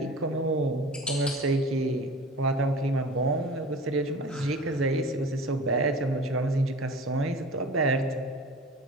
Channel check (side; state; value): both; normal; correlation 0.38